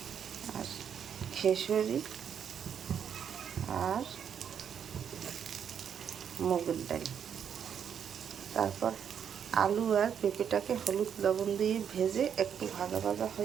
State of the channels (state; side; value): quieter; left; 8.1 dB